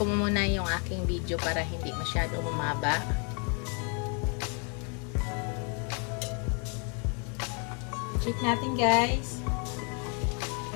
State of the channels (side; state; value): right; quieter; 37.2 dB